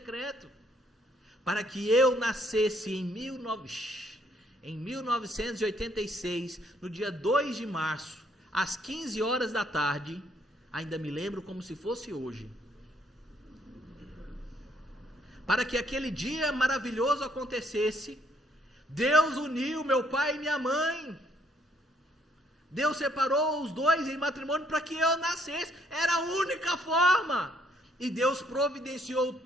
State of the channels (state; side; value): normal; both; correlation 0.68